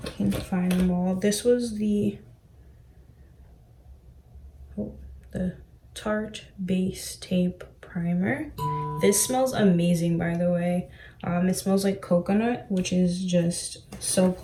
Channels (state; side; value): identical; both; correlation 1.00